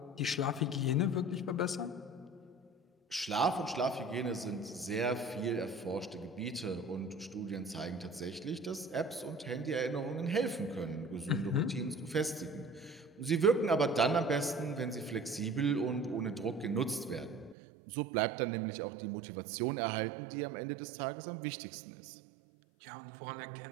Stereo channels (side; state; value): left; drops out; at 17.6 s